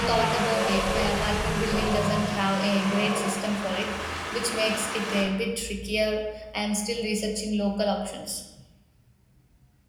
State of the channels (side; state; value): both; identical; correlation 1.00